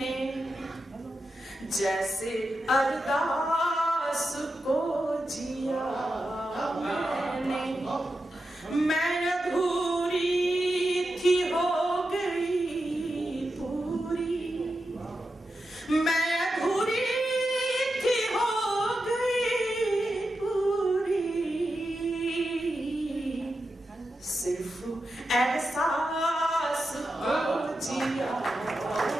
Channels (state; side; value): normal; both; correlation 0.89